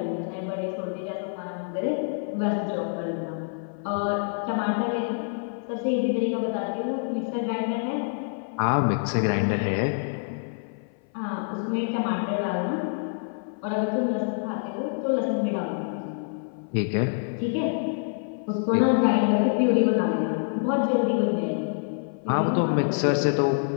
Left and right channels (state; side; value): silent; right; 57 dB below the other